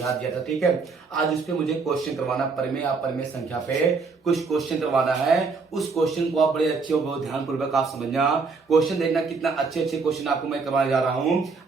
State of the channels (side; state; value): left; quieter; 4.6 dB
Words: दिया था। ठीक है, आज इस पे मुझे क्वेश्चन करवाना, परिमेय अपरिमेय संख्या पे कुछ क्वेश्चन करवाना है। उस क्वेश्चन को आप बड़े अच्छे और बहुत ध्यानपूर्वक आप समझना, क्वेश्चन देखना कितना अच्छे अच्छे क्वेश्चन आपको मैं करवाने जा रहा हूँ।